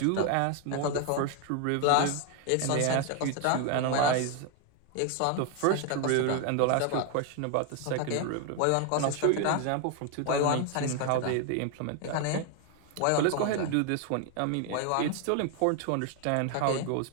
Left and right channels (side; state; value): both; different; correlation 0.01